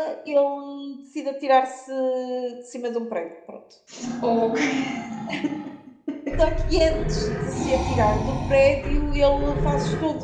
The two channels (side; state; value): both; identical; correlation 1.00